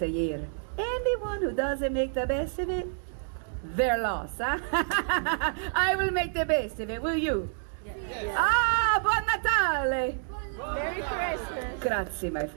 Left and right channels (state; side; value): silent; left; digital silence